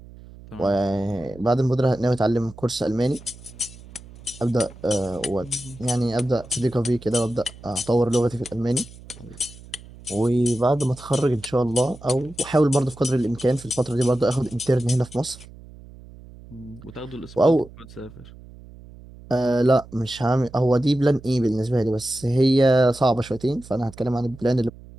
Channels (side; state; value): right; noise; hum, 19 dB below the sound